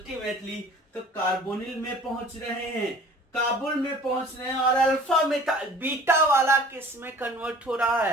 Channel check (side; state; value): both; normal; correlation 0.47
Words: तो कार्बोनिल में पहुंच रहे हैं, काबुल में पहुंच रहे हैं। और अल्फा में बीटा वाला किस में कन्वर्ट हो रहा